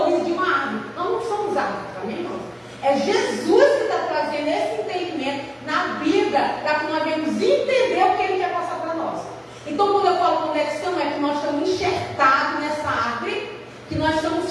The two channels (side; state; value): both; identical; correlation 1.00